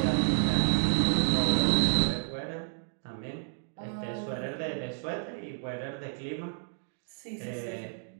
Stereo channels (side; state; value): left; silent; digital silence